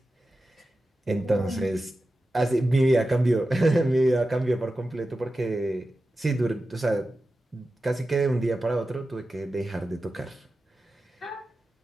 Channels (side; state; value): both; normal; correlation 0.93